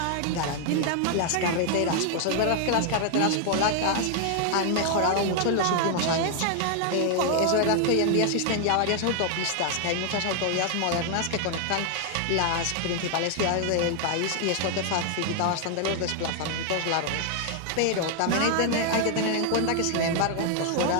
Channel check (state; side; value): different; both; correlation 0.00